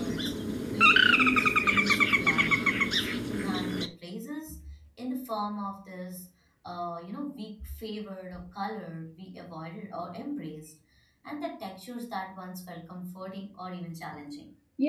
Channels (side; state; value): both; identical; correlation 1.00